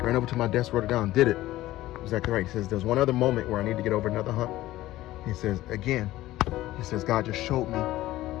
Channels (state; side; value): quieter; right; 16.0 dB